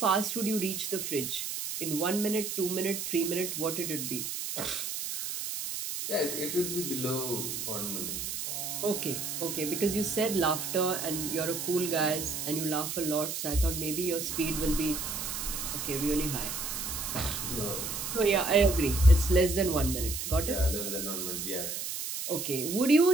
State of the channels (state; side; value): noise; right; hiss, 4 dB below the sound